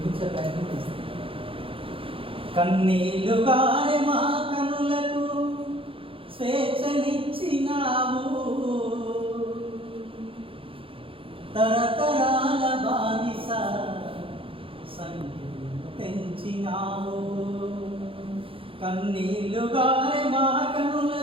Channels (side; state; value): left; late; 0.26 ms